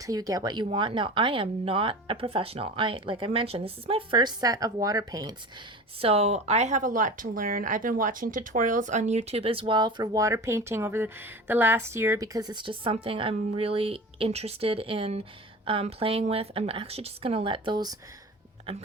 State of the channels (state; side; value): normal; both; correlation 0.34